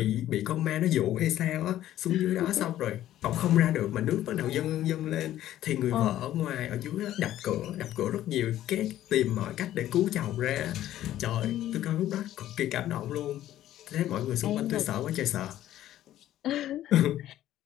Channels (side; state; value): right; quieter; 13.0 dB